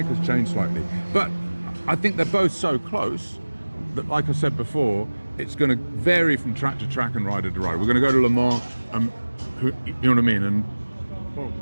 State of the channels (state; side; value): inverted; both; correlation -1.00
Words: has changed slightly. But I think they're both so close that, like I said before, it's going to vary from track to track and rider to rider. We're going to go to Le Mans, you know what I mean? And Well,